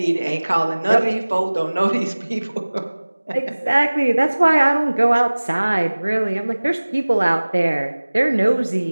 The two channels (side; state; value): both; inverted; correlation -1.00